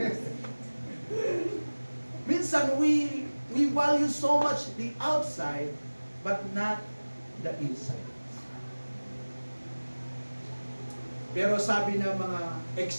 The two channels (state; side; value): inverted; both; correlation -1.00